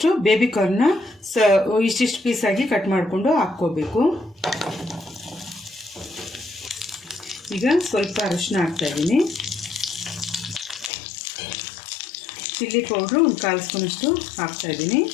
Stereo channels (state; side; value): drops out; right; at 10.9 s